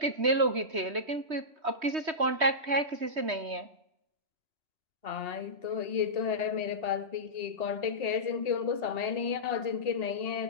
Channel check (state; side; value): late; left; 3.2 ms